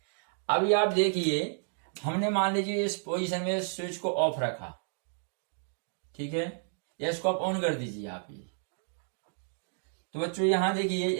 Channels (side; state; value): left; silent; digital silence